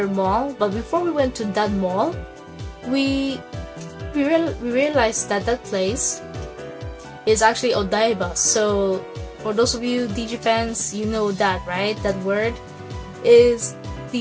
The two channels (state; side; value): identical; both; correlation 1.00